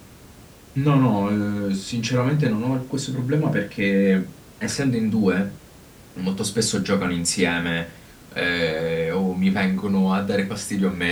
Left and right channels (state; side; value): identical; both; correlation 1.00